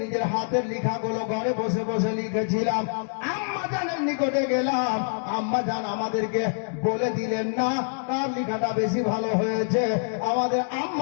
নিজের হাতের লেখাগুলো ঘরে বসে বসে লিখেছিলাম, আম্মা জানের নিকটে গেলাম, আম্মা জান আমাদেরকে বলে দিলেন না কার লেখাটা বেশি ভালো হয়েছে। আমাদের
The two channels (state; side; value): silent; right; digital silence